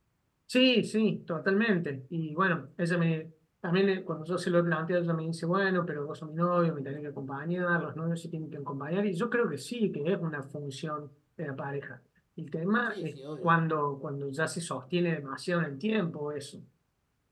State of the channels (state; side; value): identical; both; correlation 1.00